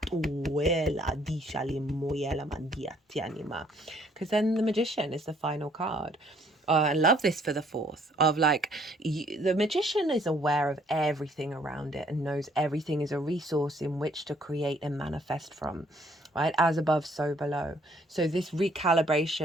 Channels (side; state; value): both; normal; correlation 0.64